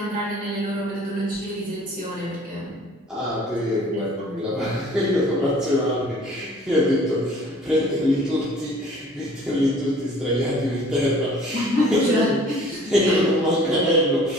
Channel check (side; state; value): both; normal; correlation 0.51